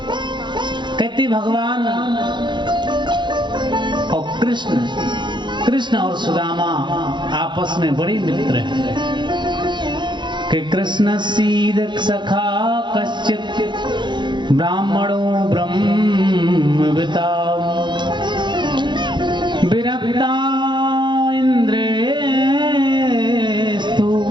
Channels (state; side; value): late; left; 0.22 ms